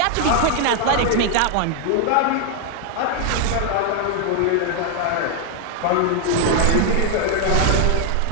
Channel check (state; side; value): different; both; correlation 0.00